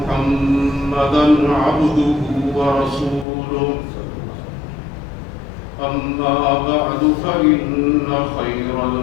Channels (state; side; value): drops out; right; at 3.2 s